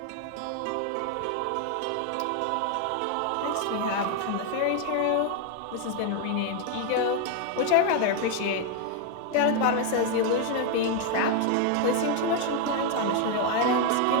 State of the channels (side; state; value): both; different; correlation 0.00